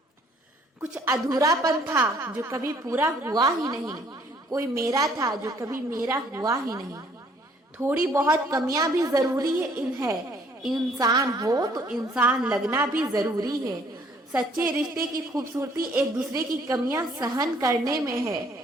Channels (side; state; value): both; normal; correlation 0.62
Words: कुछ अधूरापन था जो कभी पूरा हुआ ही नहीं, कोई मेरा था जो कभी मेरा हुआ ही नहीं। थोड़ी बहुत कमियां भी जरूरी है, इंसान हो तो इंसान लगना भी जरूरी है। सच्चे रिश्ते की खूबसूरती एक दूसरे की कमियां सहन करने में है,